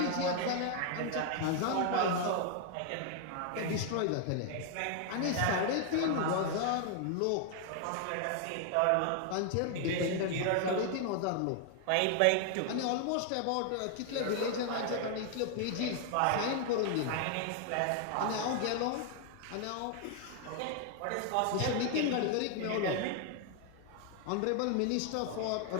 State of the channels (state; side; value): different; both; correlation 0.00